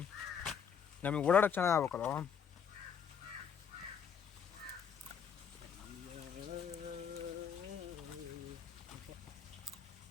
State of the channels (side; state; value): right; quieter; 7.4 dB